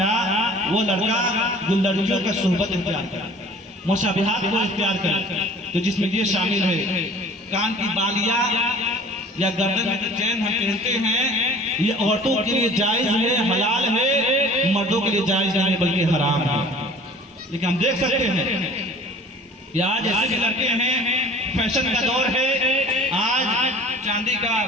वो लड़का जो लड़कियों का सुहबत इख्तियार करे, मुशाबिहात को इख्तियार करे, तो जिसमें ये शामिल है कान की बालियां या गर्दन में चैन हम पहनते हैं, ये औरतों के लिए जायज है, हलाल है, मर्दों के लिए जायज नहीं बल्कि हराम है। लेकिन हम देख सकते हैं कि आज ऐसे भी लड़के हैं, फैशन का दौर है, आज चांदी का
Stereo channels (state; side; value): normal; both; correlation 0.47